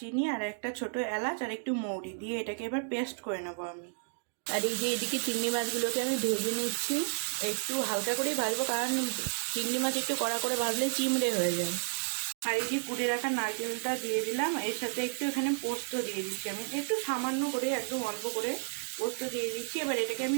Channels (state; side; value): silent; left; 56 dB below the other